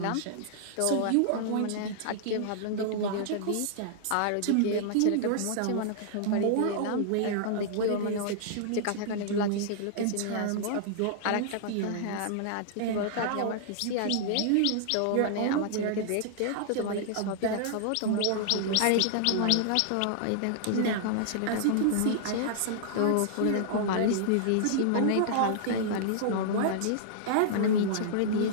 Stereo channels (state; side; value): different; both; correlation -0.01